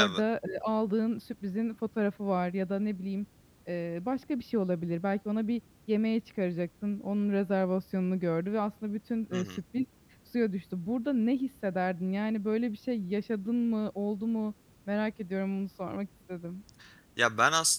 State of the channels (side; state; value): both; identical; correlation 1.00